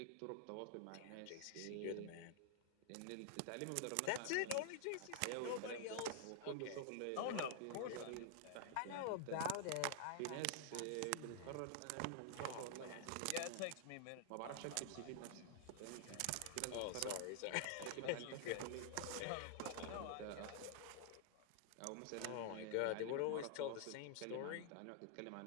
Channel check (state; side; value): different; both; correlation -0.01